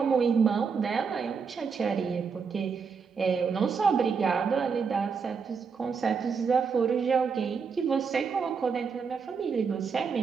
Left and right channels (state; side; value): quieter; left; 5.7 dB